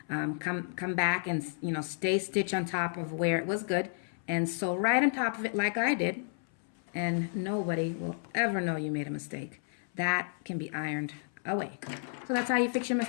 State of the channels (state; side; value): silent; right; 57 dB below the other